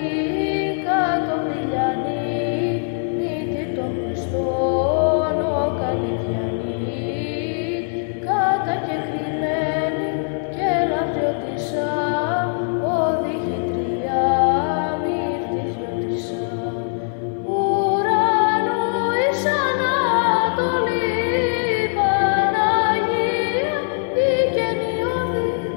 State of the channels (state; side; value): silent; right; 65 dB below the other